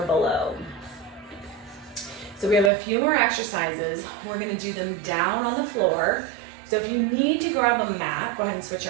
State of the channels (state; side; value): drops out; left; at 2.7 s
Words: below. So we have a few more exercises. We're gonna do them down on the floor. So if you need to grab a mat, go ahead and switch